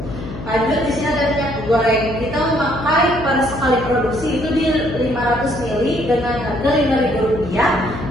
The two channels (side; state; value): left; noise; hum, 10 dB below the sound